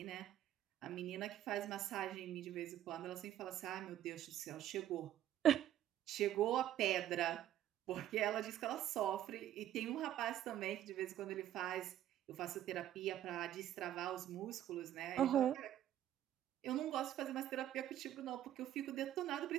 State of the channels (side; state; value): left; quieter; 11.9 dB